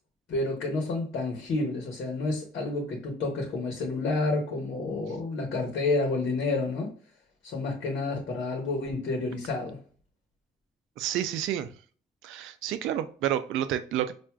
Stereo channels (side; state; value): both; normal; correlation 0.40